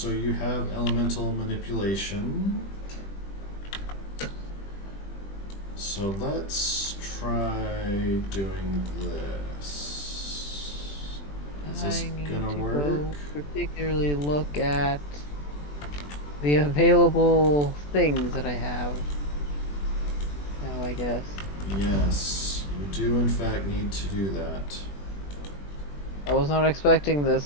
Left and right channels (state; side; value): late; right; 20 ms